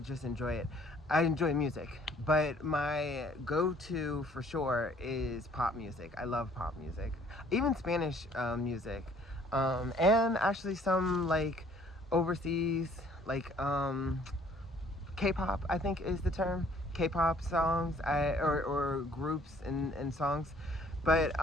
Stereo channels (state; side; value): normal; both; correlation 0.58